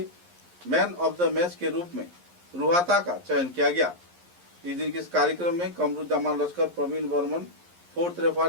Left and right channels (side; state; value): left; late; 11 ms